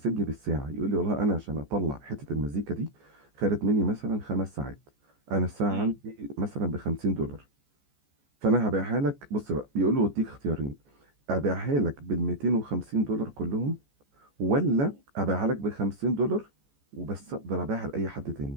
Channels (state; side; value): late; left; 14 ms